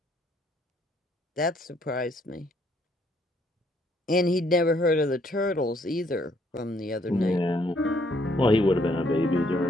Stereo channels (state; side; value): normal; both; correlation 0.68